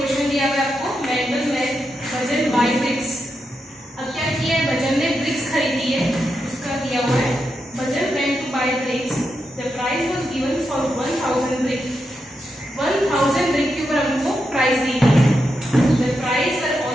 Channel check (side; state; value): both; normal; correlation 0.85